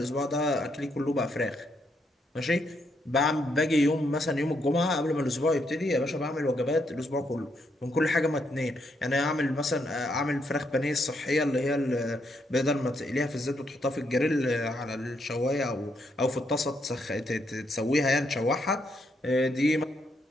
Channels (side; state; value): both; normal; correlation 0.76